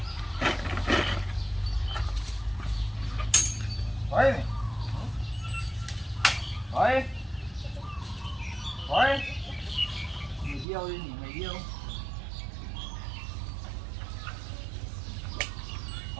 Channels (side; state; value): left; drops out; at 10.7 s